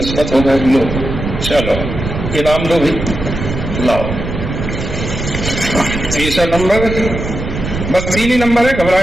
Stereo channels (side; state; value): right; noise; rumble, 5 dB below the sound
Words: ہو گئے. لو چلو انعام دو بھی، لاؤ. تیسرا نمبر، بس 3 ہی نمبر ہے،